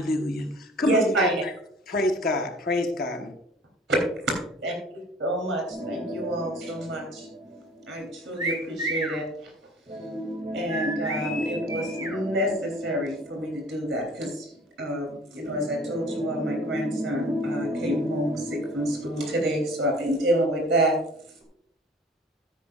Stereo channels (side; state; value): both; normal; correlation 0.48